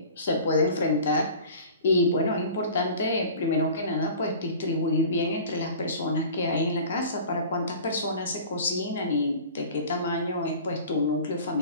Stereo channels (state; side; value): inverted; both; correlation -0.41